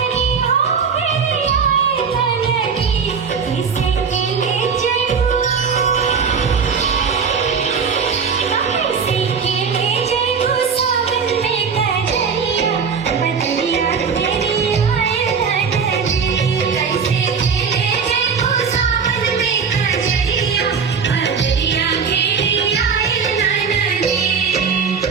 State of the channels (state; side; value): quieter; left; 6.0 dB